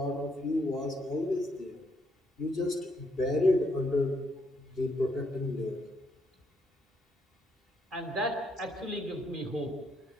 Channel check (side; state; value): both; normal; correlation 0.74